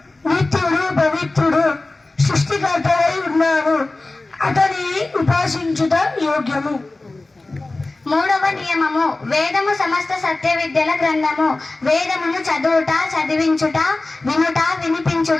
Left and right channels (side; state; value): right; quieter; 3.1 dB